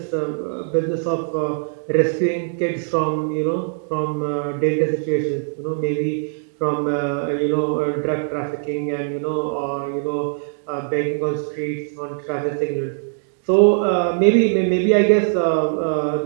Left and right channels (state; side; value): silent; left; digital silence